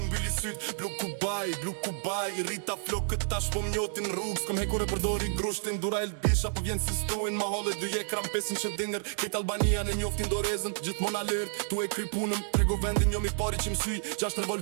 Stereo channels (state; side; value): silent; left; digital silence